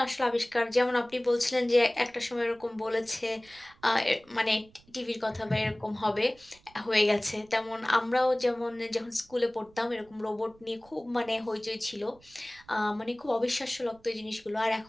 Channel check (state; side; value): noise; right; rumble, 28 dB below the sound